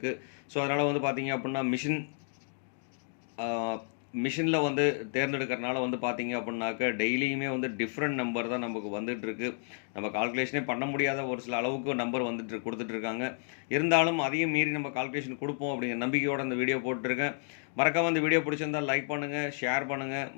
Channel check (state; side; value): silent; right; 57 dB below the other